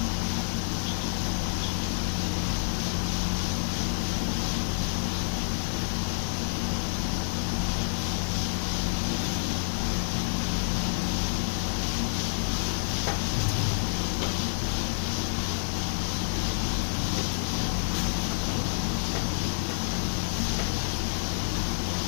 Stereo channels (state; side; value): silent; right; digital silence